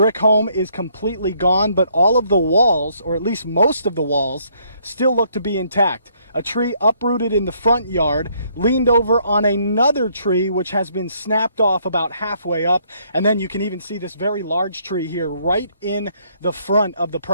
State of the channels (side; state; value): both; inverted; correlation -0.68